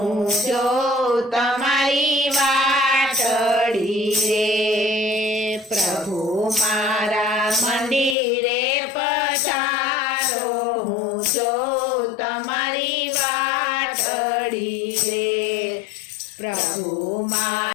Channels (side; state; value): right; drops out; at 8.2 s